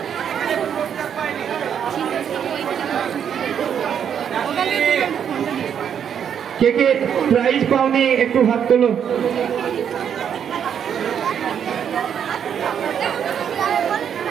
কে কে প্রাইজ পাওনি একটু হাত তোলো।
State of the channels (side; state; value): left; quieter; 8.3 dB